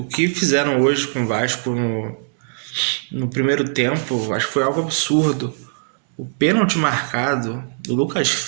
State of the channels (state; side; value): silent; left; digital silence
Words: que fizeram hoje com o Vasco no primeiro tempo, acho que foi algo absurdo. O pênalti marcado do Lucas